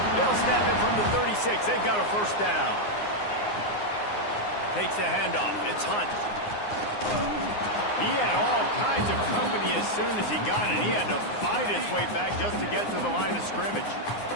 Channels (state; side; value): late; right; 9.7 ms